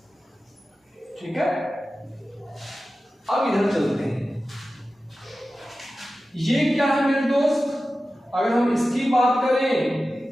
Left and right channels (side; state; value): both; normal; correlation 0.94